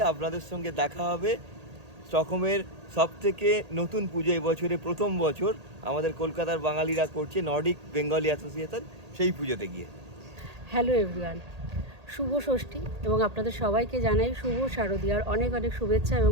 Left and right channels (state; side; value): late; left; 1.8 ms